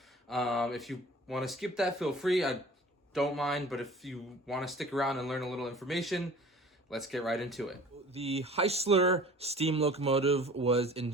If you want to skip that, feel free. I don't mind, but if you want to stick around and learn a little information, let's get right into it. The Heisler steam locomotive was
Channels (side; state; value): both; normal; correlation 0.46